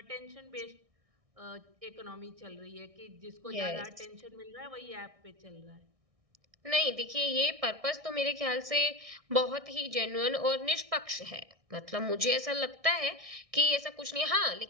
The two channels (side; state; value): left; late; 1.6 ms